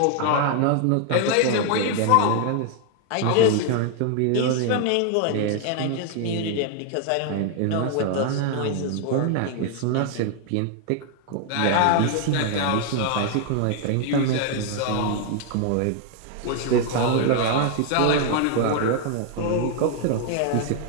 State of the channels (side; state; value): both; different; correlation 0.00